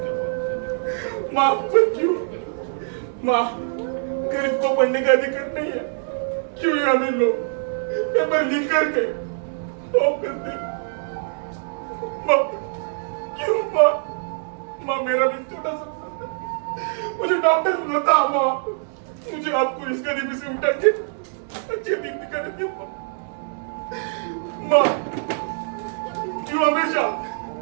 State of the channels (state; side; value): silent; left; digital silence